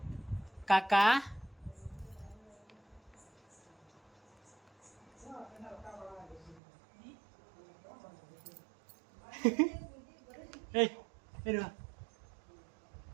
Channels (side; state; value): left; drops out; at 6.6 s